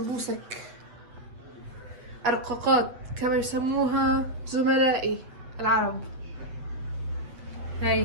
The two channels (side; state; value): left; late; 7.9 ms